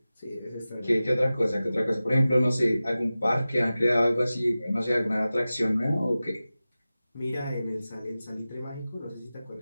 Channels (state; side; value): inverted; both; correlation -0.95